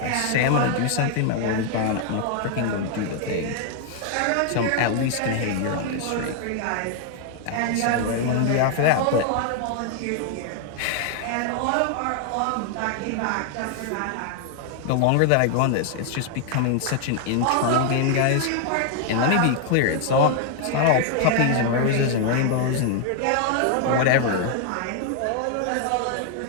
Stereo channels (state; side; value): different; both; correlation 0.00